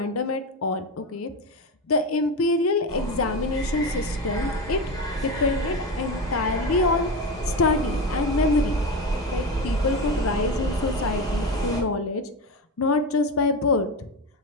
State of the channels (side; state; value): both; normal; correlation 0.20